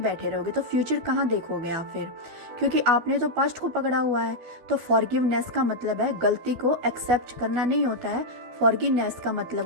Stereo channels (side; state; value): left; late; 12 ms